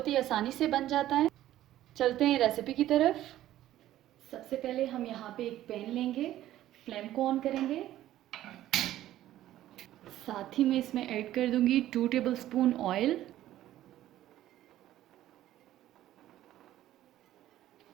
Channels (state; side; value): quieter; left; 13.6 dB